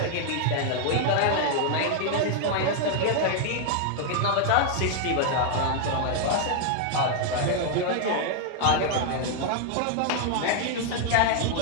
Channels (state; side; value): different; both; correlation 0.00